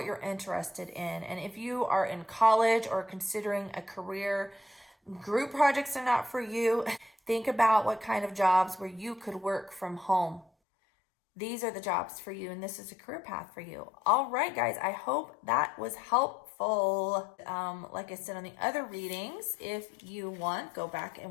you're interested in. And if you are in college or considering a career, group projects are not for you. Think about what kind of jobs where you could work from home. These are the jobs for you, and this is a career path for you. All right, guys, I hope that was helpful. Like I said on the other readings, if you want, go back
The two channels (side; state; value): right; drops out; at 10.5 s